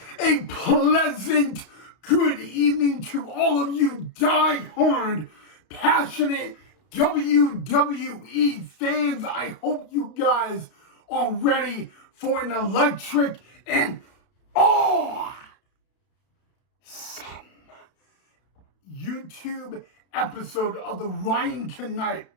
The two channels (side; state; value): right; late; 32 ms